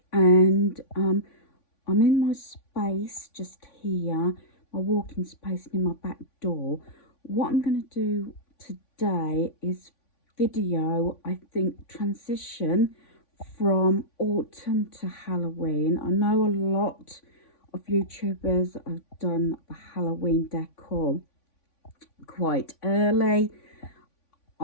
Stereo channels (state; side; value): late; right; 3.5 ms